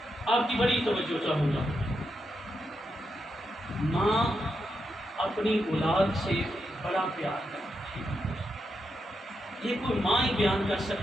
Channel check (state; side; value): normal; both; correlation 0.84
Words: آپ کی بڑی توجہ چاہوں گا۔ ماں اپنی اولاد سے بڑا پیار کرتی ہے، یہ کوئی ماں ہی بیان کر